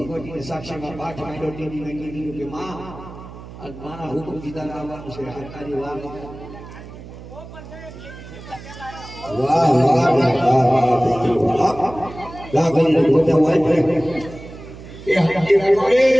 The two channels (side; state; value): right; noise; hum, 15 dB below the sound